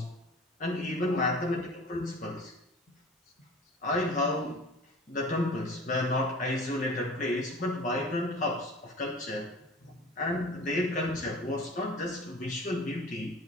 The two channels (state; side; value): normal; both; correlation 0.41